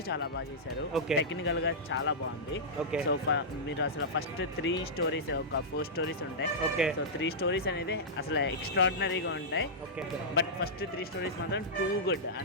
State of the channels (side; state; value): both; normal; correlation -0.12